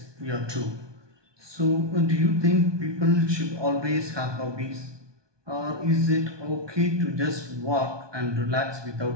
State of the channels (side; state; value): left; late; 1.2 ms